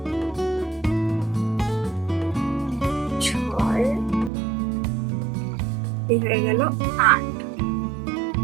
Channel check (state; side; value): drops out; left; at 4.3 s